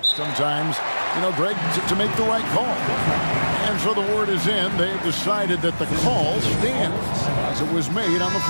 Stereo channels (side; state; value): both; inverted; correlation -1.00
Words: Sometimes, Greg, to make the right call. And so the word is in. They've decided that the call stands as it was made on the